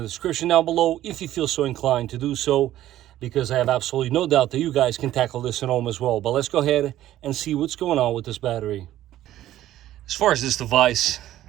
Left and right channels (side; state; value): left; quieter; 13.5 dB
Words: description down below if you feel so inclined to do so, because I have absolutely no doubt that you guys can tackle this at home as well. But let's go ahead and see what's going on with this battery. As far as this device,